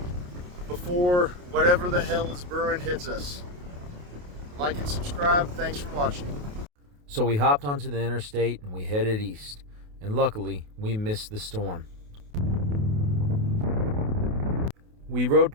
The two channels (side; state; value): left; late; 28 ms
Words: before whatever the hell is brewing hits us. Like and subscribe. Thanks for watching. So we hopped onto the interstate and we headed east. And luckily, we missed the storm. We rode